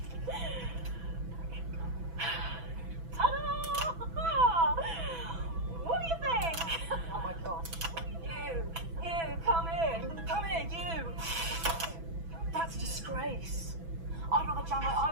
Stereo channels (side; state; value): left; late; 6.0 ms